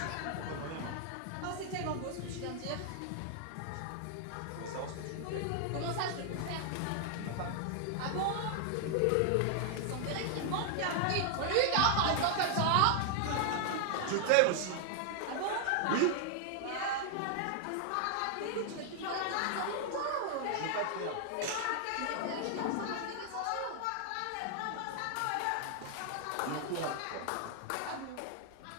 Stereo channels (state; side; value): different; both; correlation 0.00